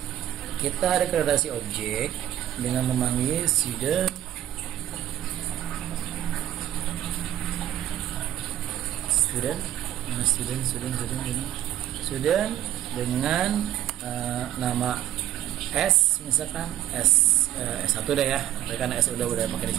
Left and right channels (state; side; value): quieter; left; 12.1 dB